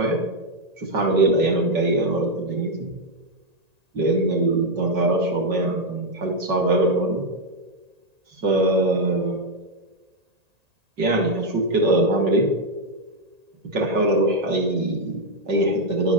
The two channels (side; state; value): left; late; 1.8 ms